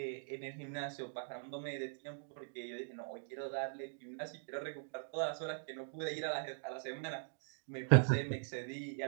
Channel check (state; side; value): silent; left; digital silence